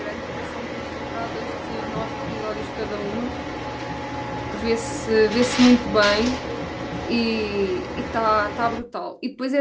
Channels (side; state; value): both; identical; correlation 1.00